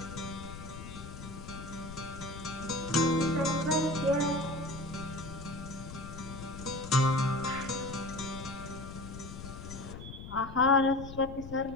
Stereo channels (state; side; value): noise; left; rumble, 11 dB below the sound